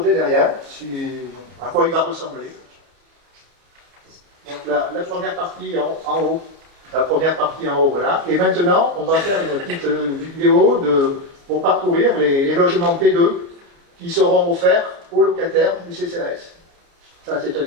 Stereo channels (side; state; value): left; late; 29 ms